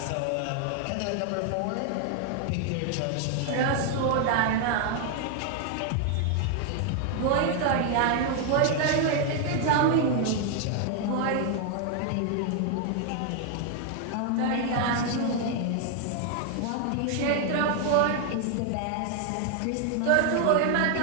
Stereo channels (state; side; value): different; both; correlation 0.00